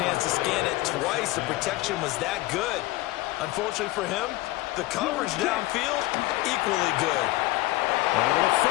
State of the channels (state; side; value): quieter; right; 18.6 dB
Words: to scan it twice. The protection was that good. Unfortunately for him, the coverage downfield, equally good. Able to